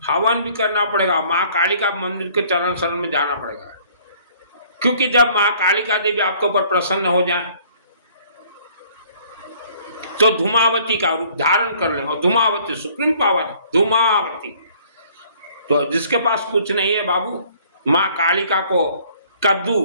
हवन भी करना पड़ेगा, माँ कालिका मंदिर के चरण शरण में जाना पड़ेगा। क्योंकि जब माँ कालिका देवी आपके ऊपर प्रसन्न हो जाए तो धूमावती का रूप धारण कर लें। और धूमावती सुप्रीम पावर है, धूमावती। तो जिसके पास कुछ नहीं है बाबू, माँ कालिका को कद्दू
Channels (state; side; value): inverted; both; correlation -0.58